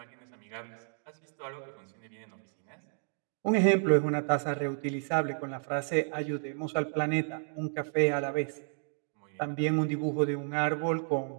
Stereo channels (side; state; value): left; silent; digital silence